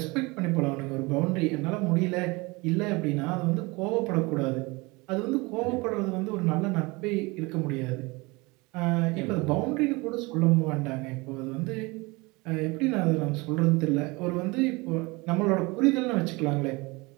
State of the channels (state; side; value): quieter; left; 24.9 dB